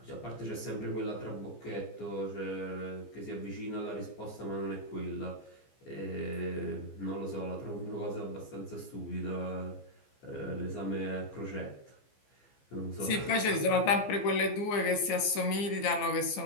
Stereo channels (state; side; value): late; right; 15 ms